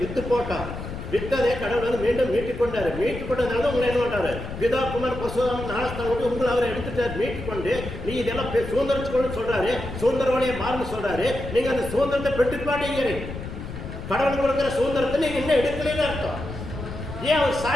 வித்து போட்டோம். வித்ததே கடவுள் வந்து மீண்டும் மீட்டுக் கொண்டாரு. மீட்டுக் கொண்டதுனால உங்களை என்ன பண்றாரு? பிதா குமார் பசுதாம் ஞானஸ்தானம் கொண்டு உங்களை அவரை எடுத்துட்டாரு. மீட்டுக் கொண்டு நீ இதெல்லாம் சுதந்திரத்துக்கு சொல்றாரு, சுதந்திரவாளியை மாறுன்னு சொல்றாரு. நீங்க அந்த சுதந்திரத்தை பெற்றுக்க மாட்டேங்கிறீங்க. கடவுள் கொடுக்குற சுதந்திரத்தை நீங்க இன்னும் எடுக்கலன்னு அர்த்தம். ஏன் அவர்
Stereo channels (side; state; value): left; noise; rumble, 9 dB below the sound